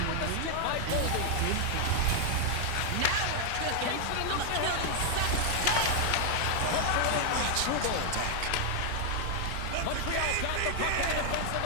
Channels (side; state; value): both; different; correlation 0.00